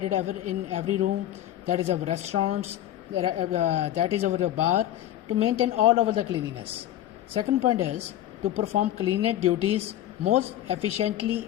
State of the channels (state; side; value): quieter; right; 12.5 dB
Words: in every room, that is our restaurants, that is our bar, to maintain all over the cleanliness. Second point is to perform cleanliness duties most